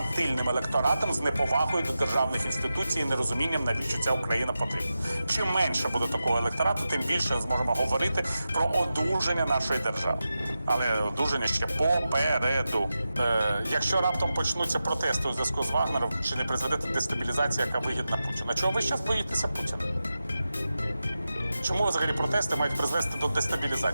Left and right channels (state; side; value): inverted; both; correlation -0.92